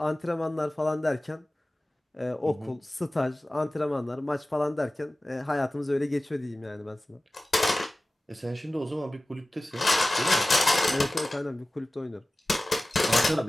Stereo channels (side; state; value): both; normal; correlation 0.97